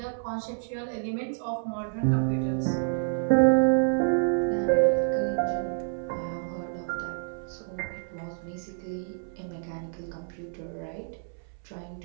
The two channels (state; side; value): silent; left; 59 dB below the other